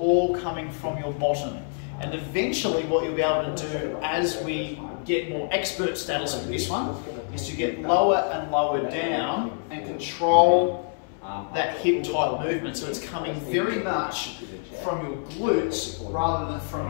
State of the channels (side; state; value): right; silent; 61 dB below the other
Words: coming from your bottom. And eventually what you'll be able to do as we get more expert status with this one is to get lower and lower down and control that hip type movement. So it's coming very much from your glutes rather than from